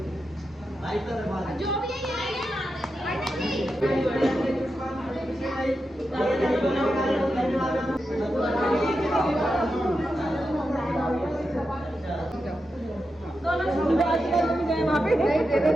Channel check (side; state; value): both; normal; correlation 0.88